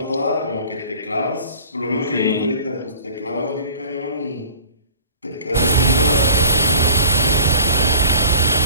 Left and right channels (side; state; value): both; inverted; correlation -0.44